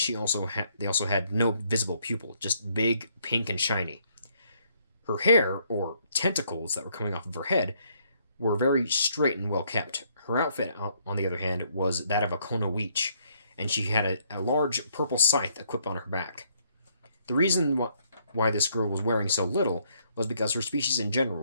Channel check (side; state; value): both; inverted; correlation -0.69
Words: also had no visible pupil, just big, pink, and shiny. Her hair, or tentacles that were coming off of her head, were very straight and well kept. Her outfit, on the other hand, was that of a Kono Weech, and she had a large purple scythe equipped on her back. The reason why this girl was wearing so little was because her species in